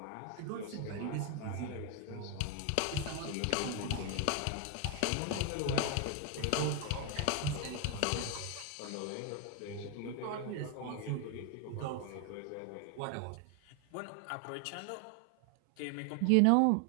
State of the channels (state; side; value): different; both; correlation 0.01